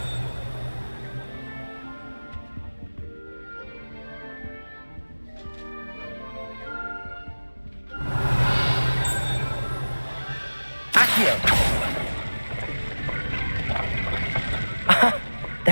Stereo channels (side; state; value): both; inverted; correlation -1.00